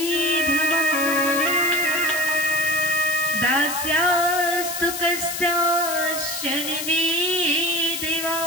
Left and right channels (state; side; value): noise; left; hiss, 5 dB below the sound